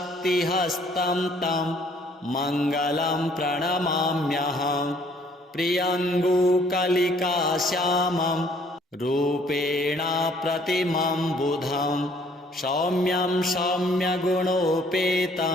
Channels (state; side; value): normal; both; correlation 0.60